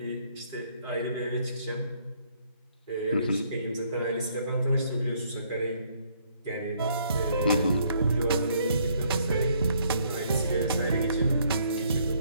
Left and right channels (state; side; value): inverted; both; correlation -0.67